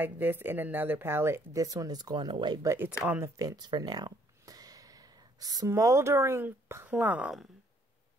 this in another palette, this one is going away, but it's on the fence for now. Smoldering Plum.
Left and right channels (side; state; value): both; normal; correlation 0.65